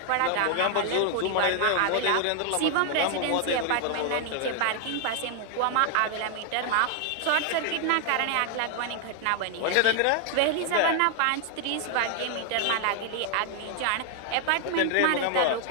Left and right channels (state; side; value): different; both; correlation 0.00